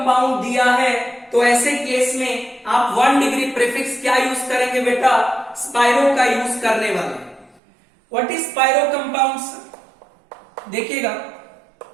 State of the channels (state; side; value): drops out; left; at 7.6 s